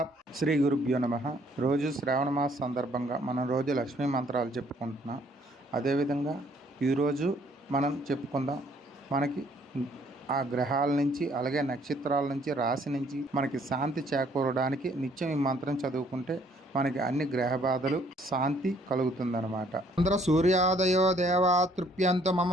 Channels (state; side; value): normal; both; correlation 0.63